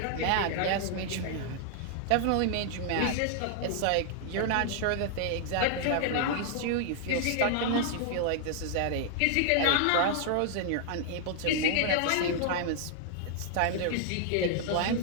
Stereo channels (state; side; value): different; both; correlation 0.00